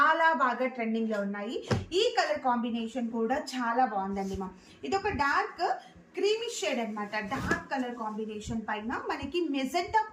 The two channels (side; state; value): both; identical; correlation 1.00